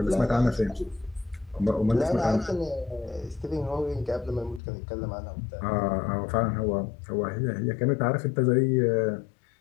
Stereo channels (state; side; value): drops out; right; at 4.6 s